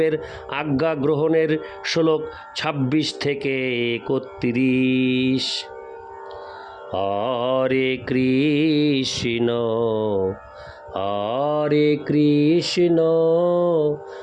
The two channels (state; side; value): identical; both; correlation 1.00